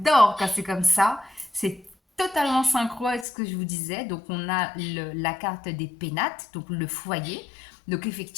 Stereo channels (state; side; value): drops out; right; at 3.2 s